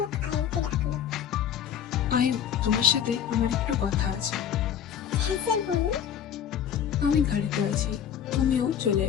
আয়ুকে ডাকলো। আয়ু, তোমার সাথে আমার একটু কথা আছে। হ্যাঁ স্যার বলুন। আমি গাড়িতে আছি, তুমিও চলে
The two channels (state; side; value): quieter; right; 8.9 dB